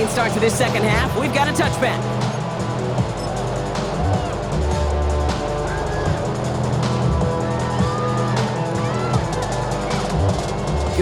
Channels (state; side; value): identical; both; correlation 1.00